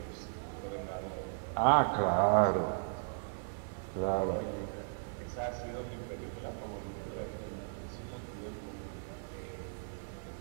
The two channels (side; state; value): left; silent; digital silence